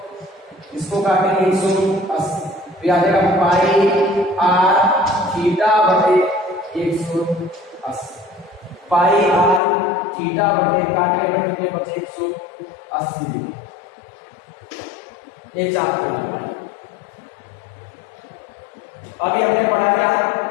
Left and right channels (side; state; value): right; drops out; at 9.6 s